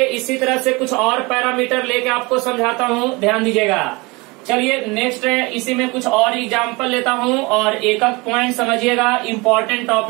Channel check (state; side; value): quieter; left; 25.5 dB